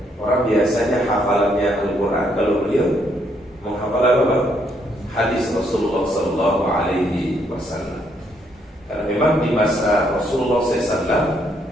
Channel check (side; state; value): both; normal; correlation 0.72